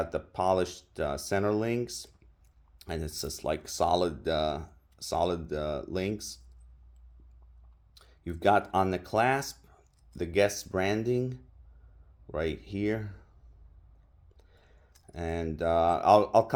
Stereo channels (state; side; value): identical; both; correlation 1.00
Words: the polished center links, and it's just like solid links. You've got on the clasp the Guess branding right here, and I'll